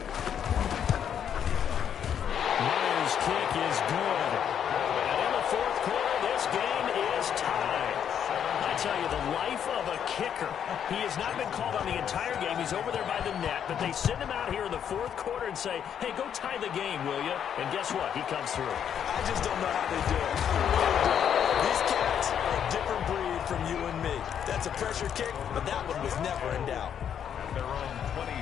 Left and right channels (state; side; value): quieter; right; 8.7 dB